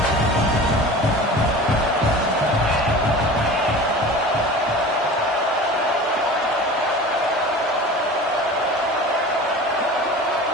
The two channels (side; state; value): both; normal; correlation 0.37